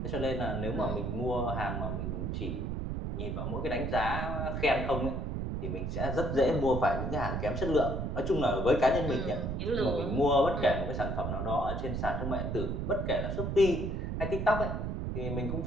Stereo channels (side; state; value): right; noise; rumble, 2 dB below the sound